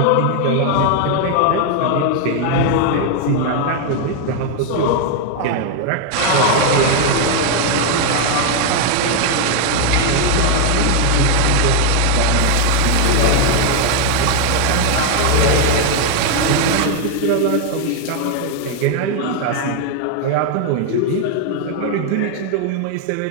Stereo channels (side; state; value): both; different; correlation 0.01